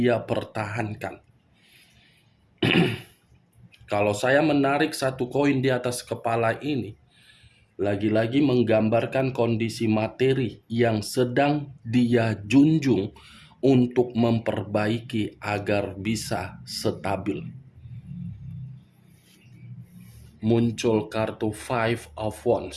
pertahankan. Kalau saya menarik 1 koin di atas kepala ini, lagi-lagi menggambarkan kondisi materi yang sedang dia junjung untuk memperbaiki agar bisa stabil. Muncul kartu Five of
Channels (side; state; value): both; identical; correlation 1.00